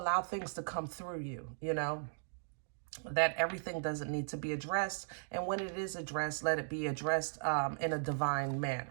things to come through you, you know, that everything doesn't need to be addressed. And when it is addressed, let it be addressed in a divine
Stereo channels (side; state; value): left; silent; digital silence